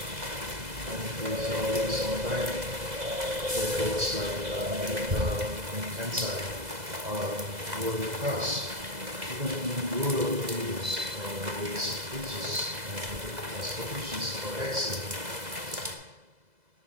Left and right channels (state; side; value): late; left; 2.0 ms